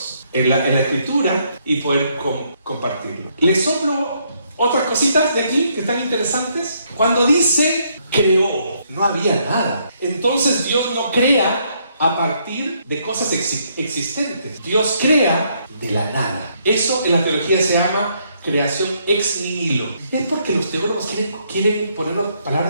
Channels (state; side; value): inverted; both; correlation -0.72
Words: en la Escritura y poder compartirlo. Les soplo otras cositas de aquí que están interesantes. Cuando dice creó, no había nada. Entonces Dios no crea a partir de cosas existentes. Dios crea de la nada. Eso en la teología se llama creación ex nihilo. Es porque los teólogos quieren ponernos